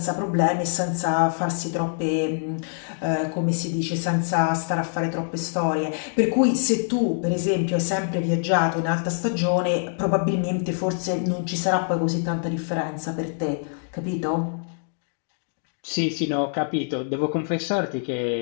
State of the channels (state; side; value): silent; right; digital silence